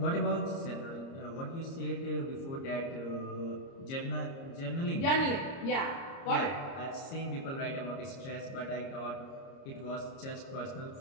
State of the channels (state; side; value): late; right; 30 ms